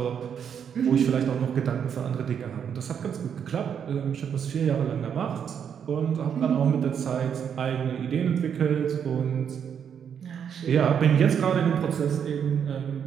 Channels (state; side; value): quieter; left; 7.9 dB